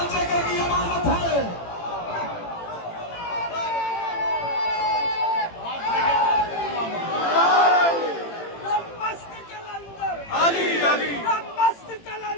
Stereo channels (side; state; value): right; late; 18 ms